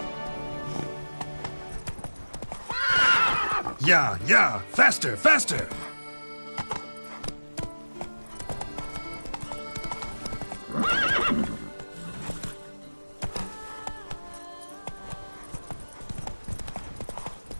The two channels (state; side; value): inverted; both; correlation -1.00